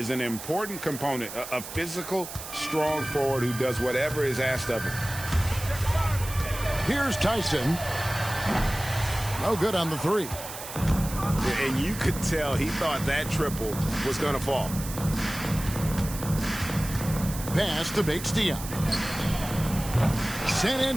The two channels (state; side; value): noise; right; hiss, 11 dB below the sound